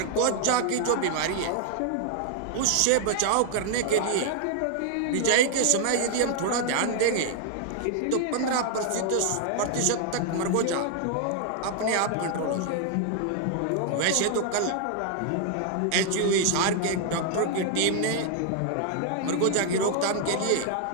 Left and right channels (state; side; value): different; both; correlation 0.00